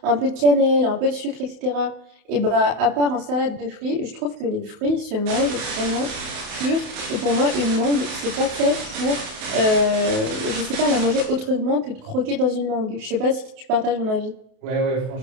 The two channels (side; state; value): left; late; 31 ms